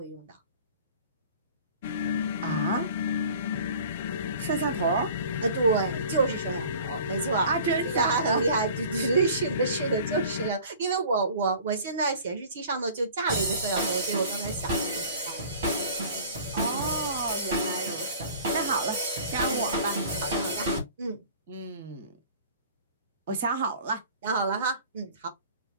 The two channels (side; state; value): both; inverted; correlation -0.45